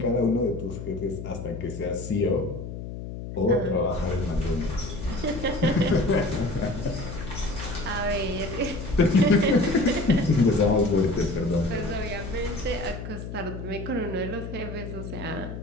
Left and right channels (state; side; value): noise; left; hum, 8 dB below the sound